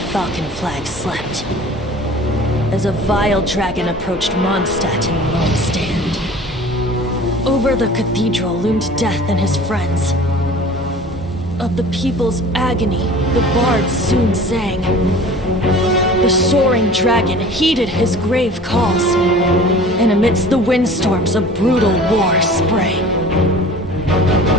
flag slept, as a vile dragon approached Mondstadt in lone stand. Over the cathedral loomed death and his friends. Of the people's agony, the bard soon sang. The soaring dragon heeded his grave calls, and amidst the windstorms a brutal war sprang.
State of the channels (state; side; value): normal; both; correlation 0.44